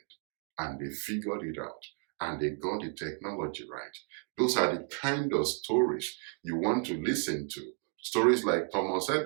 and they figured it out, and they got the technology right. Those are the kind of stories you want to listen to. Stories like Thomas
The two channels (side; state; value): left; quieter; 38.6 dB